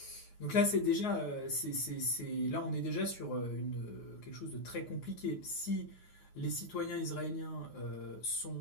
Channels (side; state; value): right; late; 9.4 ms